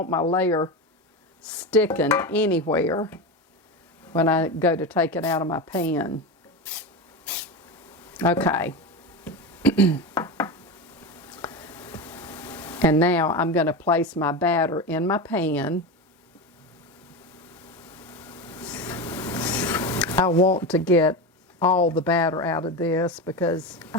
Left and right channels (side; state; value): both; normal; correlation 0.20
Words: my layer sticking anywhere when I go to take it out of my pan. Okay. And now I'm going to place my batter in my pan. I want to get all the batter out of this because